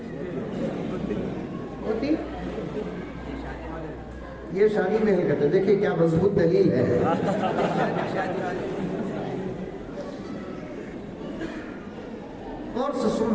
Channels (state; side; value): identical; both; correlation 1.00